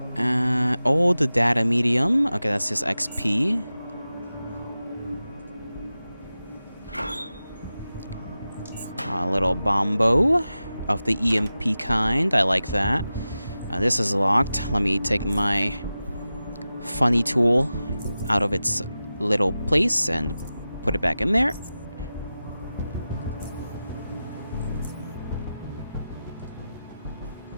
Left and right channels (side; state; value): both; inverted; correlation -0.94